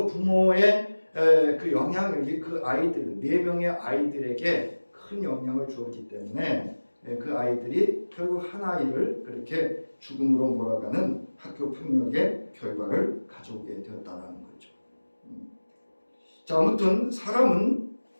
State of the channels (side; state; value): both; inverted; correlation -1.00